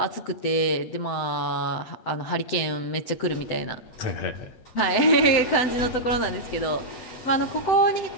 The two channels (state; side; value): late; right; 7.9 ms